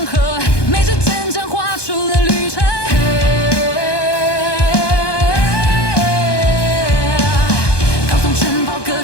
河，每支针针画出了旅程。高耸城堡隔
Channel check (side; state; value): right; late; 1.2 ms